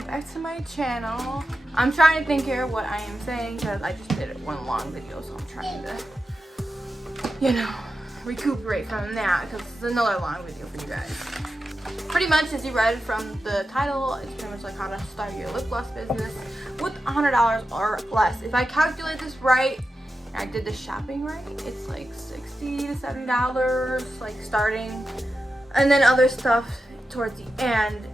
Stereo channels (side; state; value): both; normal; correlation 0.90